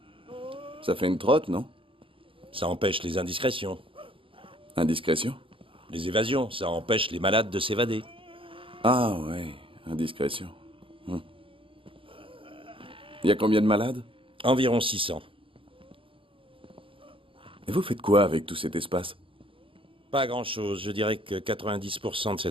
Ça fait une trotte, non? Ça empêche les indiscrétions. Indiscrétion? Les évasions, ça empêche les malades de s'évader. Ah ouais, indiscrétion. Il y a combien de malades? Environ 600. Et vous faites quoi avec tout cet espace? Pas grand-chose. Je dirais que 90% de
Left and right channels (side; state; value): left; late; 0.26 ms